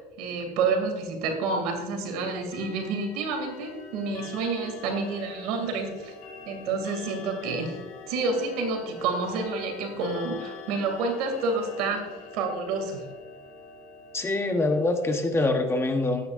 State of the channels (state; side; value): normal; both; correlation 0.38